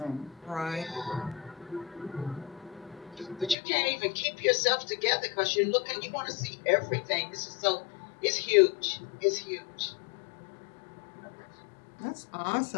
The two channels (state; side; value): drops out; right; at 3.6 s